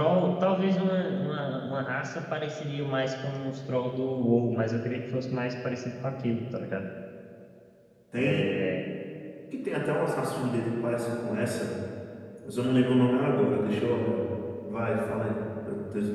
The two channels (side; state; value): both; identical; correlation 1.00